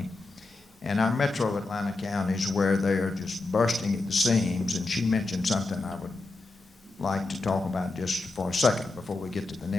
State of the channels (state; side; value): quieter; right; 3.3 dB